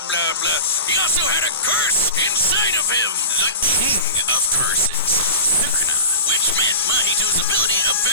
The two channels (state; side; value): inverted; both; correlation -0.32